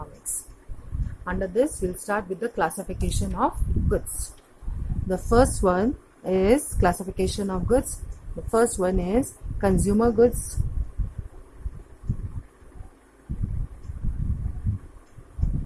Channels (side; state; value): both; identical; correlation 1.00